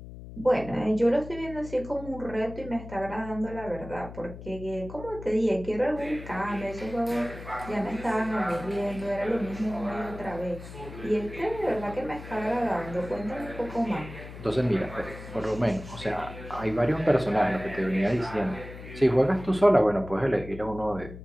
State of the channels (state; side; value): noise; left; hum, 13 dB below the sound